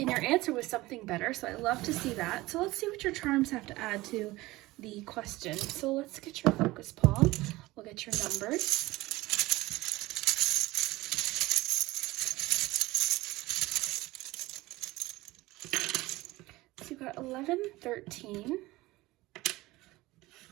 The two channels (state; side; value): quieter; left; 19.4 dB